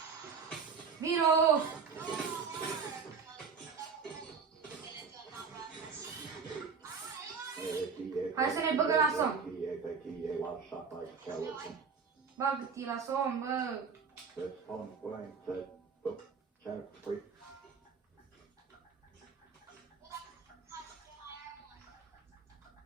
Vino! Hai să ne băgăm la somn. Bagă-te la somn, bă!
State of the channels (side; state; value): left; quieter; 5.6 dB